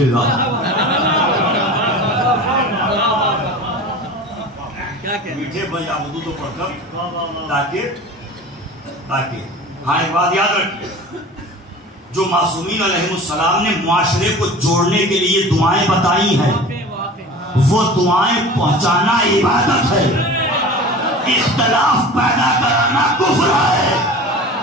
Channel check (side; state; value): both; normal; correlation 0.38